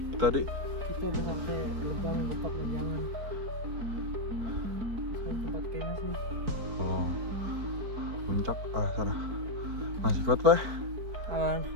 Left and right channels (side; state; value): left; late; 4.5 ms